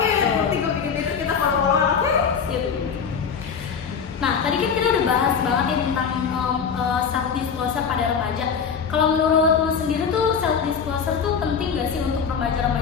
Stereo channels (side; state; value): right; quieter; 6.6 dB